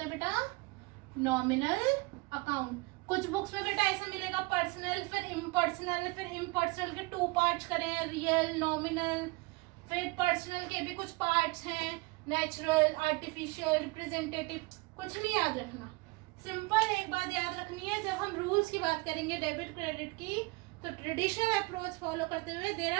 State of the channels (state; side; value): quieter; left; 25.1 dB